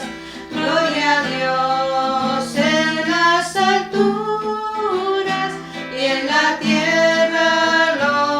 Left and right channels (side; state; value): both; identical; correlation 1.00